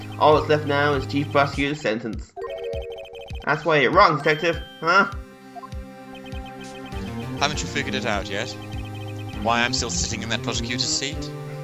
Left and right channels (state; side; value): identical; both; correlation 1.00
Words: All that's left now is chief prosecutor's sentence. That's why you're wrong, detective, huh? Haven't you figured it out yet? Why I'm still sitting in that prosecutor's seat?